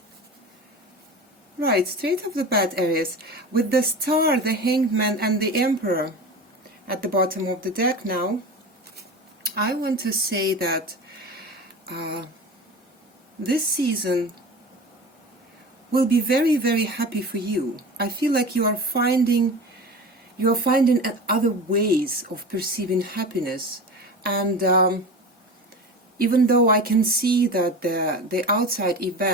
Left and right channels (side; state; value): both; normal; correlation 0.32